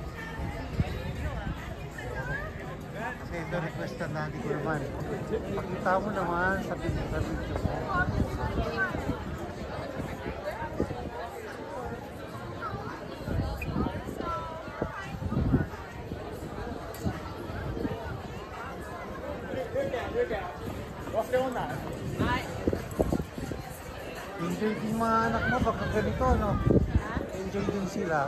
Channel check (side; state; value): both; identical; correlation 1.00